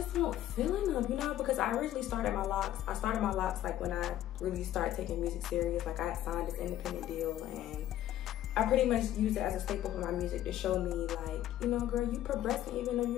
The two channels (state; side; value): quieter; right; 12.7 dB